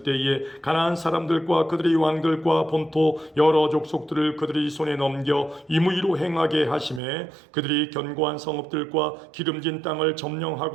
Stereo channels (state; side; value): drops out; left; at 7.0 s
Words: 때에 가나안 사람들과 그들의 왕들과 본토 여러 족속들을 그들의 손에 넘겨 이무의 공의로 행하게 하심에 그들이 견고한 성읍들과 기름진 땅을